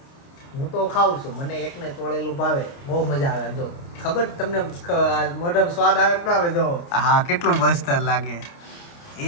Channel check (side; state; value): right; late; 29 ms